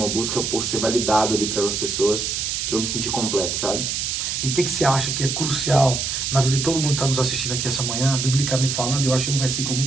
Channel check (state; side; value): noise; right; hiss, 1 dB below the sound